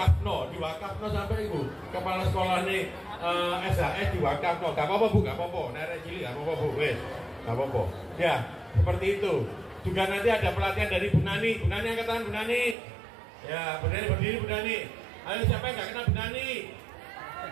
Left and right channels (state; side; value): drops out; left; at 12.8 s